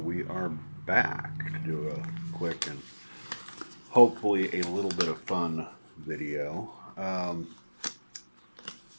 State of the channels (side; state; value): both; inverted; correlation -1.00